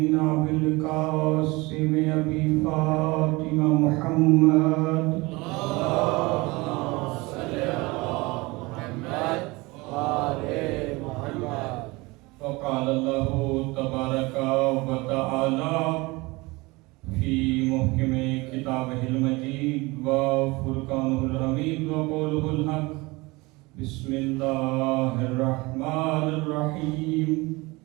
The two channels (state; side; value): quieter; left; 23.5 dB